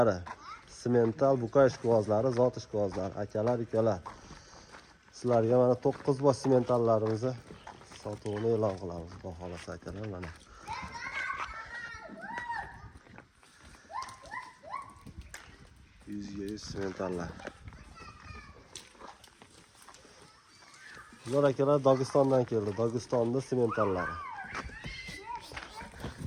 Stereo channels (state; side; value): identical; both; correlation 1.00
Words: semental buqa ishqibozlari, zot ishqibozlari, akalar, ukalar. Sizlarga mana 9 bosh sementallarimizni sotuvini e'lon qilamiz. Xudo xolasa akalar, mana. Yuzga 100 sementallar. Bular akalar Dog'istondan keldi. Dog'istonda sementallari.